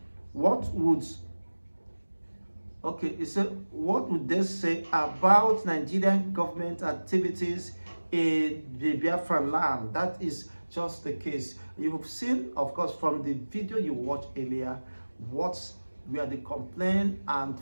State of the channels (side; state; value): both; inverted; correlation -1.00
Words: what would they say about Nigerian government activities in the Biafran land? That is just the case. You have seen, of course, from the video you watched earlier, what were the complaint and